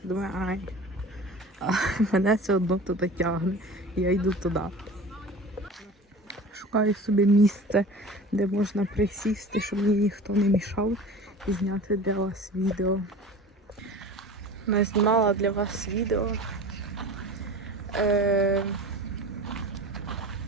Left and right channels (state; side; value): normal; both; correlation 0.37